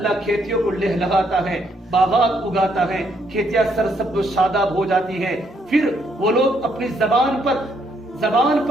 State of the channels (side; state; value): both; normal; correlation 0.72